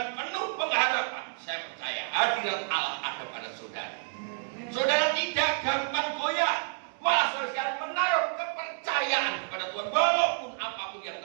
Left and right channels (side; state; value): left; silent; 58 dB below the other